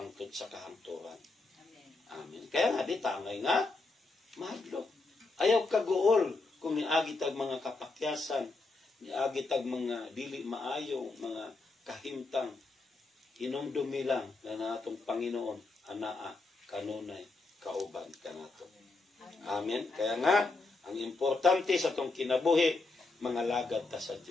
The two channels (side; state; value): right; quieter; 3.5 dB